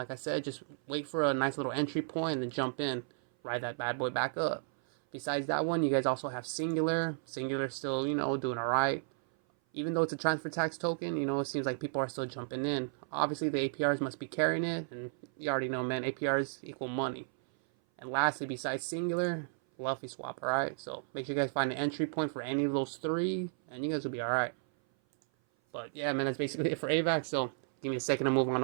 I said, just wait for a nice little entry point and then jump in. Ride that bad boy back up. Besides that one, you guys also have Singular. Singular's still, doing alright. Even though it's a transfer tax token, it seems like people are still jumping in. Obviously, the APRs must be carrying it. And you already know, man, APRs equal money. And lastly, besides Singular, Luffyswap, alright? So make sure you guys find an entry point for any of those 3. And you guys will be alright. But yeah, man, that's basically it for Avax. So give me a second to move on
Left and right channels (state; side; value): silent; left; 55 dB below the other